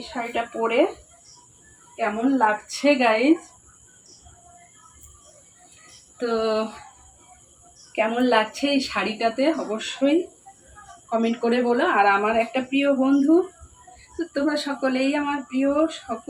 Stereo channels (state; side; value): identical; both; correlation 1.00